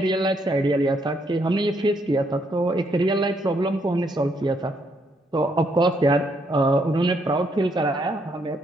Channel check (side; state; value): both; normal; correlation 0.73